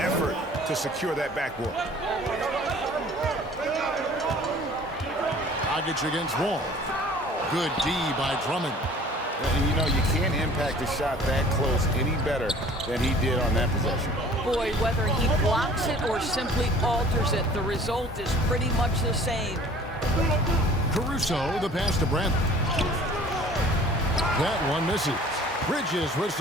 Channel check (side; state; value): both; normal; correlation 0.50